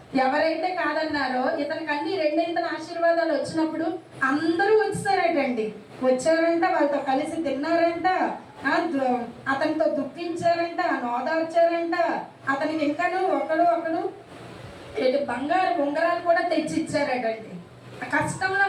ఎవరైతే కాదన్నారో, ఇతనికి అన్ని రెండింతల ఆశీర్వాదాలు వచ్చినప్పుడు అందరూ వచ్చారటండి. వచ్చారంట, వాళ్ళతో కలిసి తిన్నారంట, అతనితో దుఃఖించారంట, నోదార్చారంట. అతనికి ఇంకాను ఒకడు బంగారు ఉంగరాలు కూడా తెచ్చి ఇచ్చారటండి. కష్టంలో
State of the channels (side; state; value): both; identical; correlation 1.00